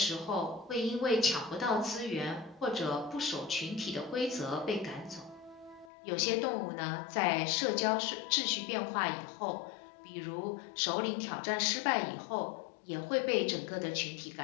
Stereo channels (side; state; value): right; drops out; at 5.9 s